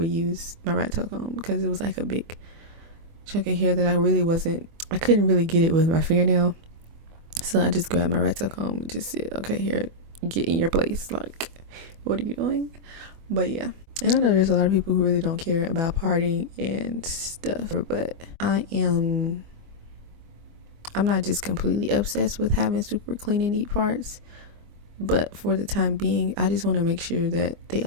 use my rat tail comb because it was like a big chunk of hair that I couldn't really get it with my fingernail. So I just grabbed my rat tail comb and just said, okay, here, get in your place. Like, what are you doing? But yeah. And I know there's a lot of people who really don't care about parting and stuff, but I'm not just completely obsessed with having super clean and neat parts. But for the time being, I just want to make sure that they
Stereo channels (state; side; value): late; left; 24 ms